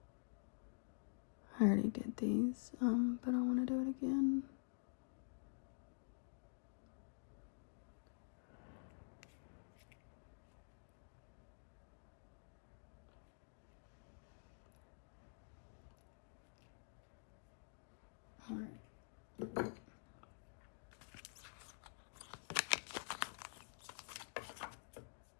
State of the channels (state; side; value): silent; right; digital silence